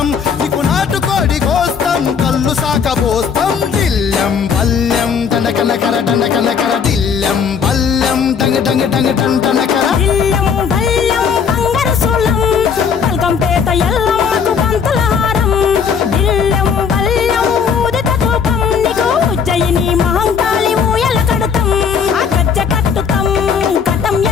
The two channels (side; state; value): right; quieter; 6.6 dB